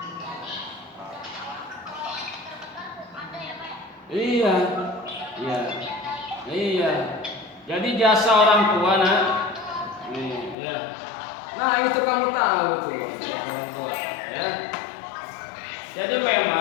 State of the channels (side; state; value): right; drops out; at 10.6 s